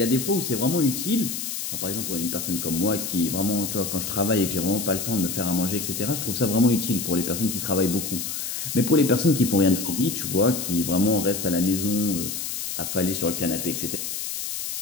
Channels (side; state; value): left; noise; hiss, 4 dB below the sound